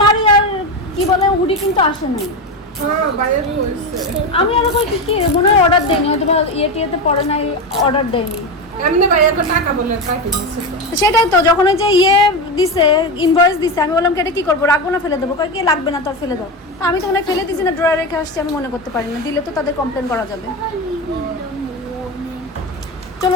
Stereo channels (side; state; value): both; normal; correlation 0.17